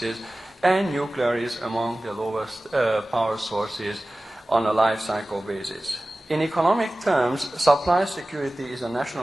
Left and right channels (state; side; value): normal; both; correlation 0.97